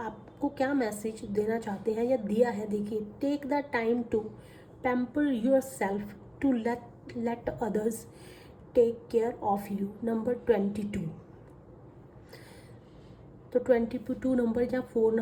क्या मैसेज देना चाहते हैं या दिया है, देखिए। Take the time to pamper yourself to let others take care of you. Number 22। तो 22 नंबर या 4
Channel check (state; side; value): identical; both; correlation 1.00